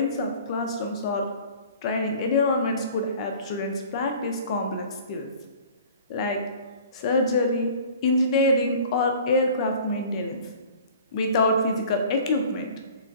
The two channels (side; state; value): both; inverted; correlation -0.46